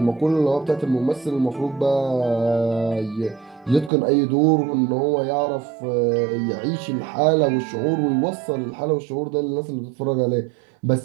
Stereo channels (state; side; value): drops out; left; at 3.9 s